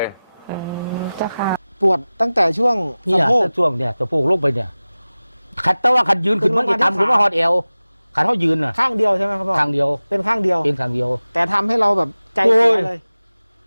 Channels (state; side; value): inverted; both; correlation -0.97